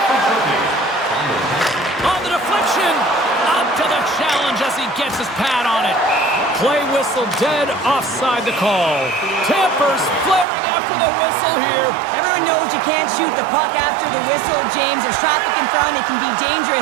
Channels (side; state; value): left; drops out; at 10.5 s